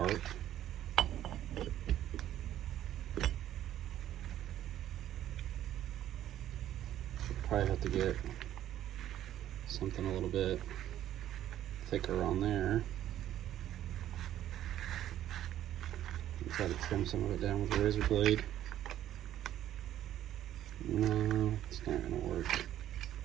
Probably have to get something a little bit thicker on there. And try to trim some of it down with a razor blade. No, it's not going to work.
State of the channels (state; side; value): quieter; left; 12.1 dB